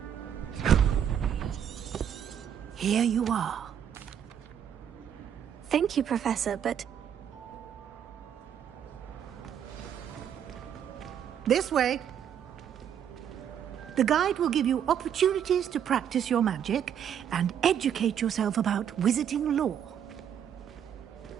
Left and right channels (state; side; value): quieter; left; 9.0 dB